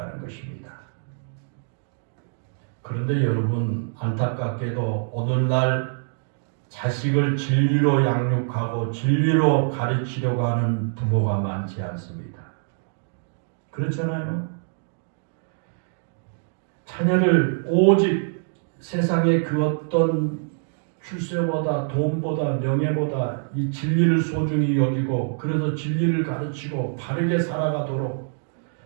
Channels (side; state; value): left; silent; digital silence